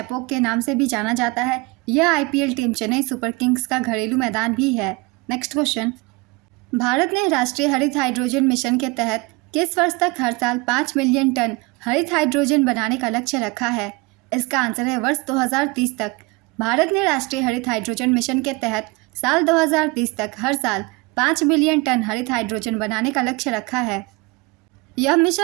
के नाम से भी जाना जाता है। यह IPL team Chennai super Kings का घरेलू मैदान भी है। नेक्स्ट क्वेश्चन, भारत ने राष्ट्रीय हरित हाइड्रोजन मिशन के तहत किस वर्ष तक हर साल 5 मिलियन टन हरित हाइड्रोजन बनाने का लक्ष्य रखा है? इसका आंसर है वर्ष 2030 तक। भारत ने राष्ट्रीय हरित हाइड्रोजन मिशन के तहत साल 2030 तक हर साल 5 मिलियन टन हरित हाइड्रोजन बनाने का लक्ष्य रखा है। यह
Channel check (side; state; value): left; quieter; 24.9 dB